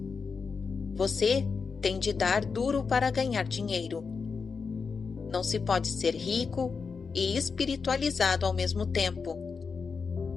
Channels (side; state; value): right; quieter; 5.2 dB